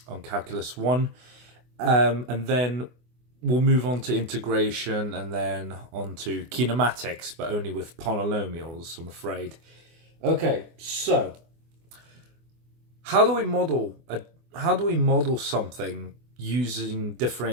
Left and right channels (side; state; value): left; late; 24 ms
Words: Calculus 1 and then we'll move on to integration and then on to kinematics, but only with polynomials, I'm afraid. Okay, so how do we model something using